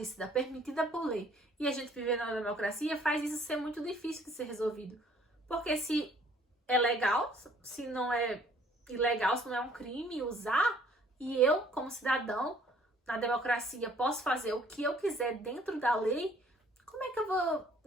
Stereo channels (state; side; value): normal; both; correlation 0.59